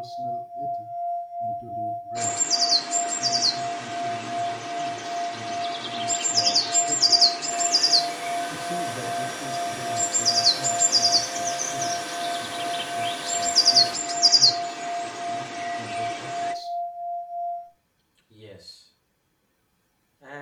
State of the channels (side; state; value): both; identical; correlation 1.00